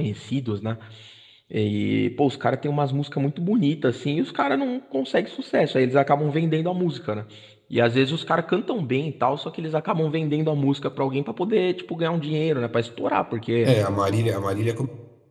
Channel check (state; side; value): identical; both; correlation 1.00